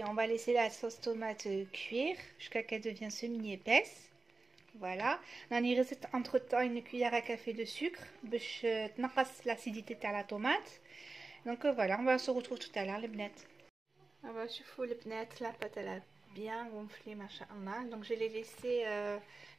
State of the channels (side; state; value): left; quieter; 3.7 dB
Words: on va laisser la sauce tomate cuire jusqu'à qu'elle devienne semi-épaisse. Voilà, on a entre temps une cuillère à café de sucre pour l'acidité de la tomate. Donc voilà, on va se retrouver tout à l'heure les bnettes. On va chauffer les bnettes, la pâte elle a bien gonflé machallah. Donc je l'ai laissé